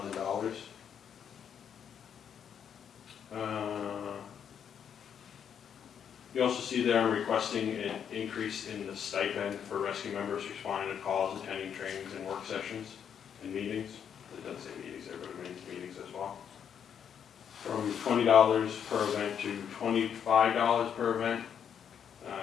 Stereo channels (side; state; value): right; quieter; 8.2 dB